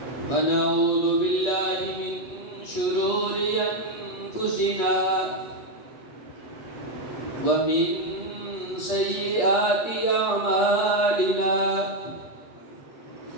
ونعوذ بالله من شرور أنفسنا ومن سيئات أعمالنا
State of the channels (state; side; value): late; right; 8.4 ms